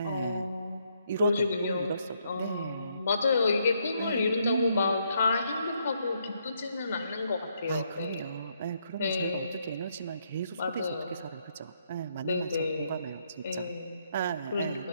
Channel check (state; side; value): inverted; both; correlation -0.74